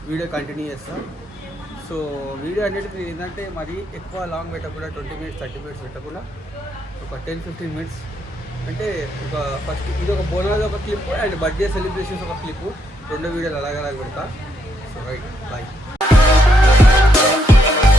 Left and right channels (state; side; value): normal; both; correlation 0.76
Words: వీడియో కంటిన్యూ చేస్తాను. సో వీడియో అనేది ఏంటంటే మరి ఎక్కువ లాంగ్ పెట్టకుండా 20 minutes 30 minutes పెట్టకుండా ఒక 10-15 minutes అంటే ఒక ఫస్ట్ ఇది ఒక బోనాలు ఒక క్లిప్ అండ్ బర్త్డే సెలబ్రేషన్స్ ఒక క్లిప్, 2 వీడియోలు అలాగ పెడతా. So right bye.